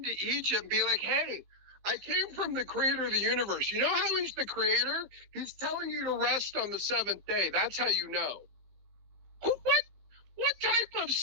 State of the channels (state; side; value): late; left; 15 ms